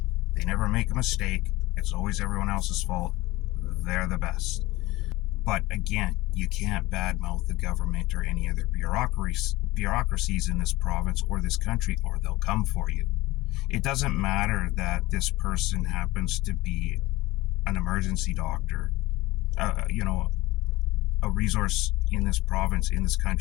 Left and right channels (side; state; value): right; quieter; 19.5 dB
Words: They never make a mistake. It's always everyone else's fault. They're the best. But again, you can't badmouth the government or any other bureaucracies in this province or this country, or they'll come for you. It doesn't matter that this person happens to be an emergency doctor, a resource in this province, in this